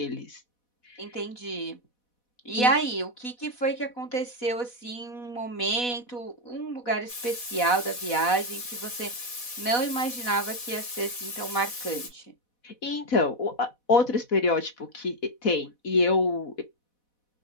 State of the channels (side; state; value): right; late; 4.1 ms